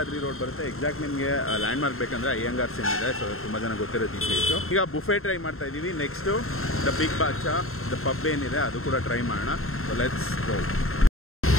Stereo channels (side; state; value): right; late; 0.62 ms